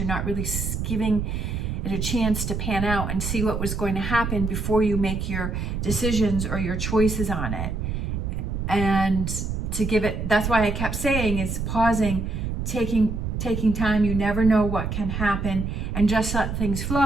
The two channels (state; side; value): noise; right; rumble, 3 dB below the sound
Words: not really giving it a chance to pan out and see what was going to happen before you make your decisions or your choices on it. And to give it, that's why I kept saying, is pausing, taking time. You never know what can happen, and just let things